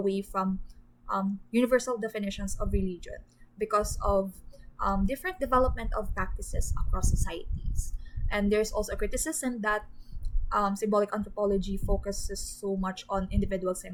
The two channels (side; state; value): both; identical; correlation 1.00